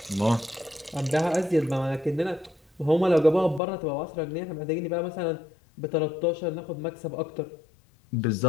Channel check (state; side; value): drops out; right; at 3.6 s